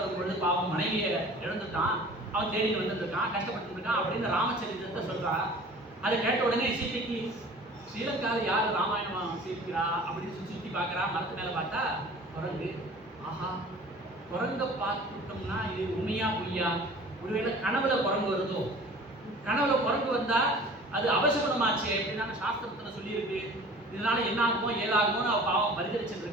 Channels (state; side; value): normal; both; correlation 0.45